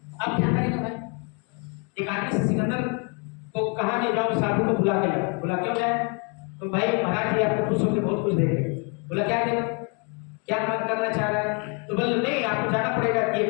अब क्या करेगा भाई? एक आदमी से सिकंदर को कहा कि जाओ साधु को बुला के लाओ। बोला क्यों जाए? तो भाई महाराज जी आपको खुश होकर बहुत कुछ देंगे। बोला क्या देगा, क्या मन करना चाह रहा है? तो बोले नहीं आपको जाना पड़ेगा, ये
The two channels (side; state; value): right; quieter; 35.4 dB